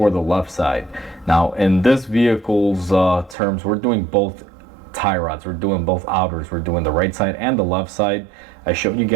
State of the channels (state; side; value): drops out; left; at 3.4 s